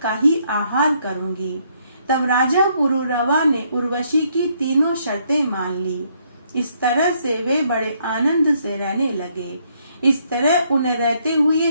का ही आहार करूंगी। तब राजा पुरुरवा ने उर्वशी की तीनों शर्तें मान ली। इस तरह से वे बड़े आनंद से रहने लगे। इस तरह उन्हें रहते हुए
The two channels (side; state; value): both; inverted; correlation -0.71